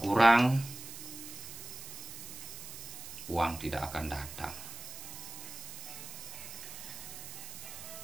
kurang, uang tidak akan datang.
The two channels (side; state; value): right; noise; hiss, 11 dB below the sound